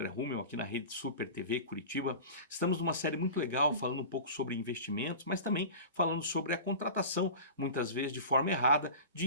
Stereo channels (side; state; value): both; inverted; correlation -0.33